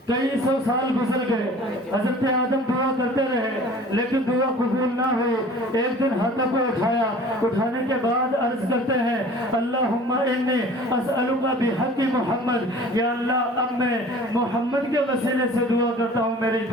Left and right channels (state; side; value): normal; both; correlation 0.45